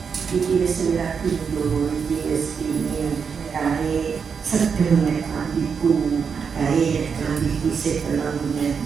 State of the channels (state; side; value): quieter; left; 6.2 dB